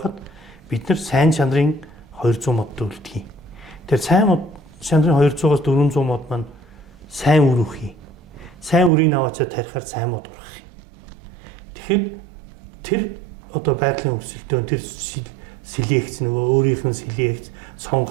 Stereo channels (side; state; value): left; drops out; at 8.9 s